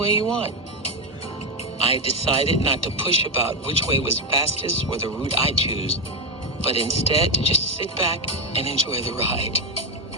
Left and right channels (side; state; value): both; normal; correlation 0.08